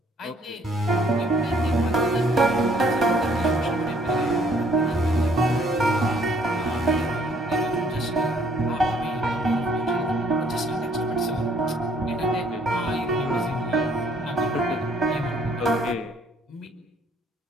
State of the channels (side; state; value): both; normal; correlation 0.62